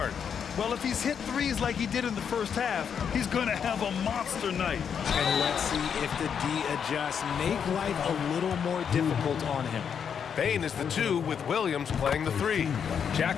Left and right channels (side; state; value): right; quieter; 7.4 dB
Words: Well, if he's hit threes like he did in the first half, he's going to have a monster night. And let's see if the D adjusts, make life a little more difficult on him. Bain is the 2 with Williams playing the 3.